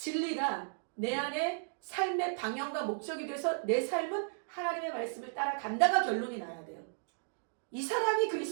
내 안에 삶의 방향과 목적이 돼서 내 삶은 하나님의 말씀을 따라간다가 결론이 나야 돼요. 이 사람이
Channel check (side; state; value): left; silent; digital silence